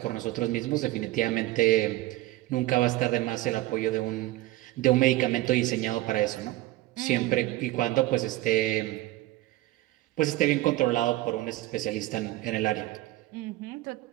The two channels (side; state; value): left; quieter; 17.5 dB